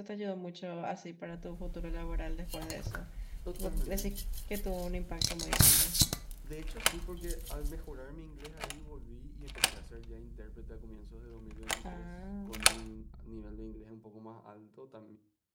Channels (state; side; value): identical; both; correlation 1.00